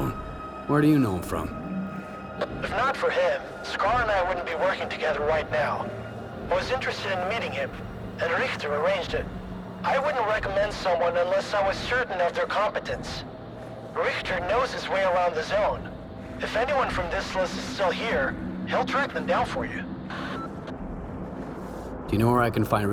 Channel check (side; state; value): both; identical; correlation 1.00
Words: Where do you know him from? If not for him, Scar and I wouldn't be working together right now. I was interested in meeting him, and Richter arranged it. I wouldn't recommend someone unless I was certain of their competence. Richter knows his way around the zone. If anyone from this list is still here, he'll track them down for you. Do you know where I can find